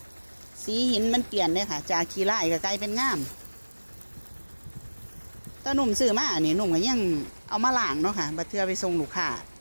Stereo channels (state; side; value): inverted; both; correlation -1.00